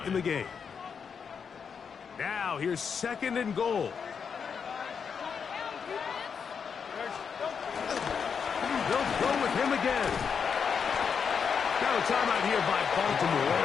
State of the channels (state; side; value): quieter; right; 6.5 dB